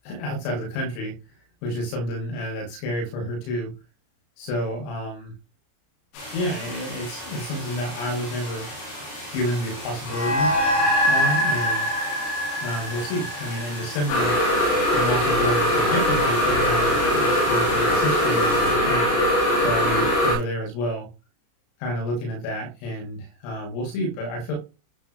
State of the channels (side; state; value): right; late; 34 ms